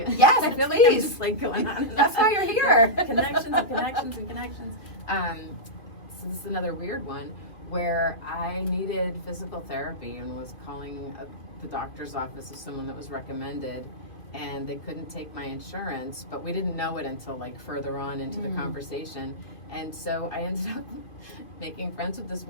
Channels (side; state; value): right; late; 2.5 ms